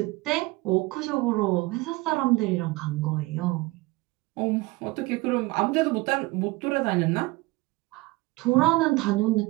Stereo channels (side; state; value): left; quieter; 22.2 dB